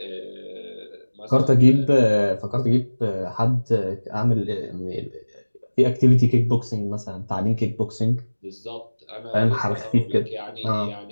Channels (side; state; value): both; inverted; correlation -1.00